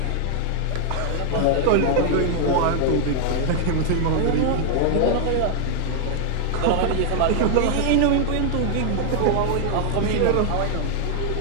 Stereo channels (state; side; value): different; both; correlation 0.00